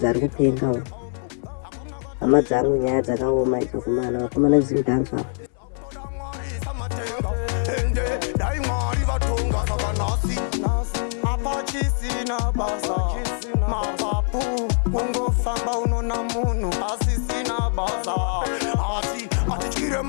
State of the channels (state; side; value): silent; right; 58 dB below the other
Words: ari kupenga. Hama dzangu nyaya dzakaoma idzo kumana vakomana zimudhanza kungofamba unona munhu asisina basa asi atityire